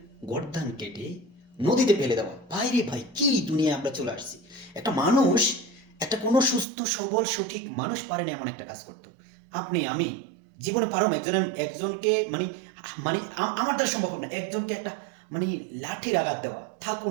গর্দান কেটে নদীতে ফেলে দেওয়া! ভাই রে ভাই, কি দুনিয়ায় আমরা চলে আসছি! একটা মানুষ, একটা কোনো সুস্থ সবল সঠিক মানুষ পারে না এমন একটা কাজ করতো। আপনি আমি জীবনে পারো একজনকে মানে মানে আমার দ্বারা সম্ভব না একজনকে একটা মানে লাঠির আঘাত দেওয়া, থাক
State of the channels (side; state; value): left; drops out; at 6.7 s